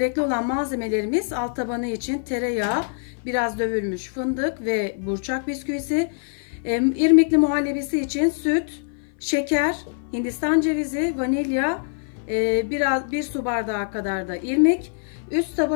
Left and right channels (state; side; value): silent; right; 56 dB below the other